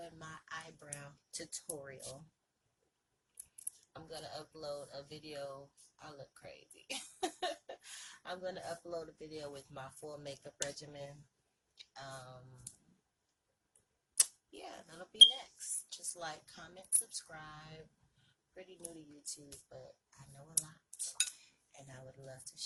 my eyebrow tutorial. I'm going to upload a video. I look crazy. I'm going to upload a video with my full makeup regimen. Um, yeah, that'll be next. Just like, comment, subscribe. Pretty new to YouTube, but I know a lot, and I would love to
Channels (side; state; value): both; identical; correlation 1.00